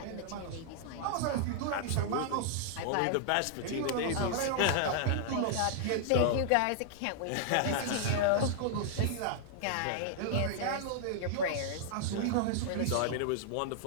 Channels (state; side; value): different; both; correlation -0.01